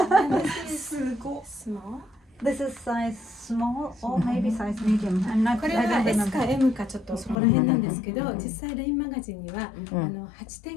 this is small. This is size small or maybe size medium. I'm not. これ I は don't S か remember. M かちょっとそこら辺なんですけど、実際レインマガジンには8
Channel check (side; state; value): right; drops out; at 7.4 s